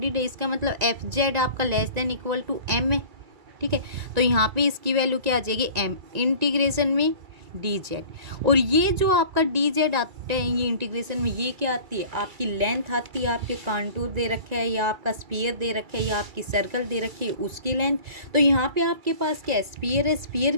है, इसका मतलब एफ जेड आपका less than equal to M है। ठीक है, तो यहाँ पे इसकी वैल्यू क्या आ जाएगी एम इंटीग्रेशन में डी जेड। और ये जो आपका डी जेड आता है ये इंटीग्रेशन में, ये क्या आती है आपकी लेंथ आती है, आपके कांटूर दे रखे है या आपका स्फीयर दे रखे है या आपकी सर्कल दे रखी है उसकी लेंथ। तो यहाँ पे आपके पास क्या है स्फीयर है, स्फीयर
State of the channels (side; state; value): left; late; 1.9 ms